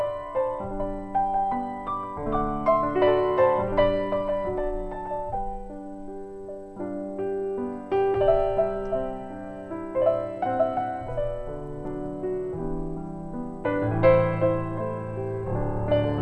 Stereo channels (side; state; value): both; identical; correlation 1.00